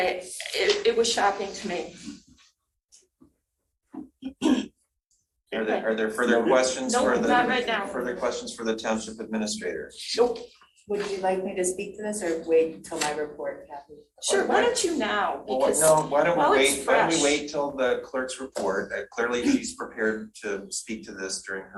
was shocking to me. Are there further questions Nope, for the? not right now. Further questions for the township administrator? Nope. Would you like me to speak to this or wait until my report, Kathy? Sure, why don't you now? Because Why don't while we it's fresh. wait till the clerk's report? Clearly she's prepared to speak to this during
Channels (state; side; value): identical; both; correlation 1.00